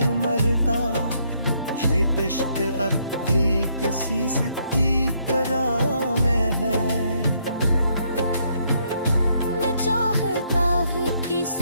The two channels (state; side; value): inverted; both; correlation -0.72